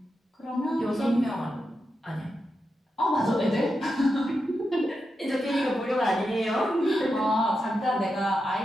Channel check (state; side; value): normal; both; correlation 0.87